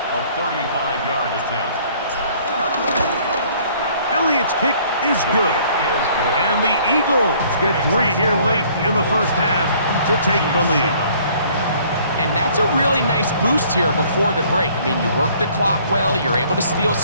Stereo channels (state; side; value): inverted; both; correlation -0.58